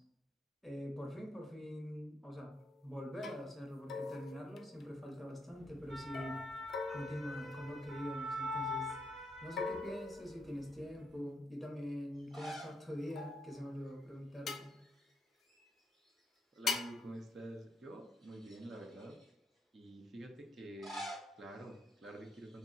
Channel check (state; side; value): normal; both; correlation 0.77